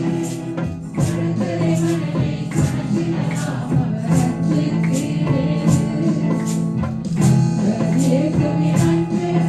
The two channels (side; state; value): both; identical; correlation 1.00